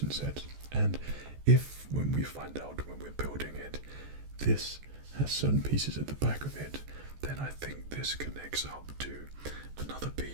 sets. And if, when we find out when we're building it, this has certain pieces at the back of it, then I think this connects up to another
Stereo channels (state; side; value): late; left; 14 ms